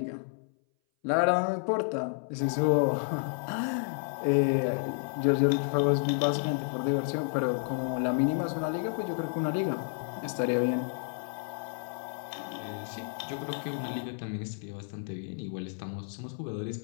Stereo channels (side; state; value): right; silent; 57 dB below the other